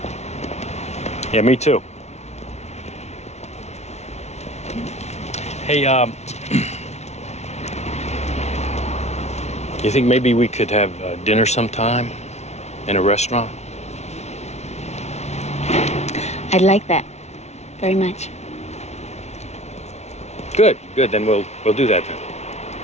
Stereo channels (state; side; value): late; right; 0.32 ms